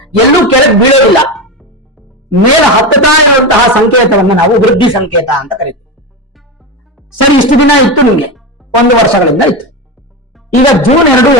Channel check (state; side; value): normal; both; correlation 0.18